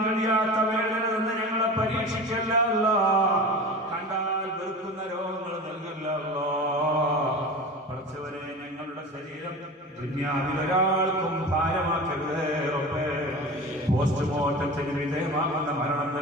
കഴിയാത്ത വേദന നിന്ന് ഞങ്ങളെ പരീക്ഷിക്കല്ല അല്ലാഹ്. കണ്ടാൽ വെറുക്കുന്ന രോഗങ്ങൾ നൽകല്ല അല്ലാഹ്. പടച്ചവനെ, ഞങ്ങളുടെ ശരീരം ദുനിയാവിൽ ഒരാൾക്കും ഭാരമാക്കരുതേ റബ്ബേ. പോസ്റ്റ്മോർട്ടത്തിന് വിധേയമാകുന്ന മരണം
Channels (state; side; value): normal; both; correlation 0.33